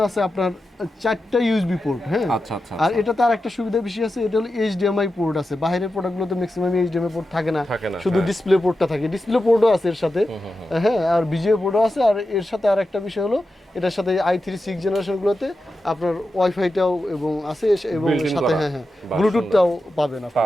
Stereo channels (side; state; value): both; normal; correlation 0.90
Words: আছে আপনার 4টা ইউএসবি পোর্ট। হ্যাঁ, আর এটাতে আর একটা সুবিধা বেশি আছে, এটা হলো HDMI পোর্ট আছে। বাইরের প্রোডাক্টগুলোতে ম্যাক্সিমাম HDMI পোর্ট থাকে না, শুধু ডিসপ্লে পোর্টটা থাকে। ডিসপ্লে পোর্টও আছে এর সাথে, হ্যাঁ, আর VGA পোর্টও আছে। আর এর সাথে আর একটা বিষয় হলো এটার সাথে i3 6 জেনারেশনগুলোতে আপনার ওয়াইফাইটাও এবং আছে, এবং সাথে হ্যাঁ ব্লুটুথটাও পাবেন